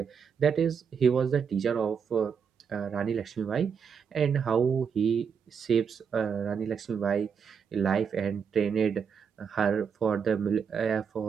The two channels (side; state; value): left; quieter; 6.7 dB